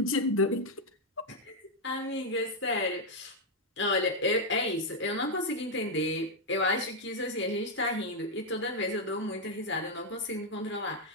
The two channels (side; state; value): both; normal; correlation -0.01